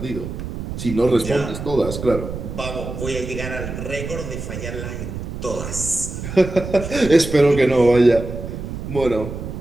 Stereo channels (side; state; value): right; noise; rumble, 7 dB below the sound